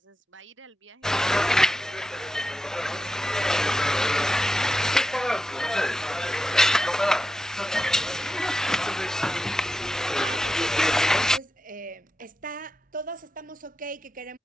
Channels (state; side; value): normal; both; correlation 0.90